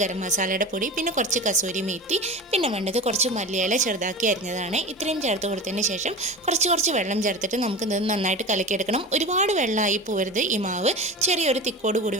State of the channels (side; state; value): both; normal; correlation 0.30